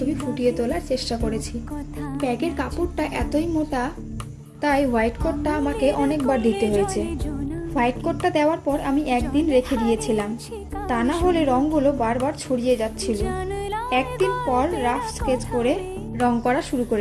ফুটিয়ে তোলার চেষ্টা করেছি। ব্যাগের কাপড়টা এতই মোটা, তাই হোয়াইট কোটটা আমাকে অনেকবার দিতে হয়েছে। হোয়াইট কোটটা দেওয়ার পর আমি একদিন রেখে দিয়েছিলাম, তা না হলে রঙগুলো বারবার ছড়িয়ে যাচ্ছিল। একদিন পর রাফ স্কেচ করে রং করা শুরু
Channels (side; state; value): both; identical; correlation 1.00